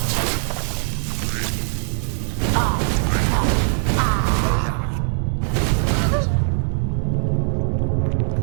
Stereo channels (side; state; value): left; silent; 56 dB below the other